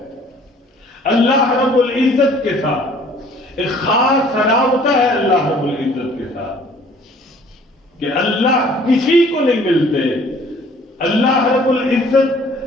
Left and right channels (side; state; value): both; normal; correlation 0.55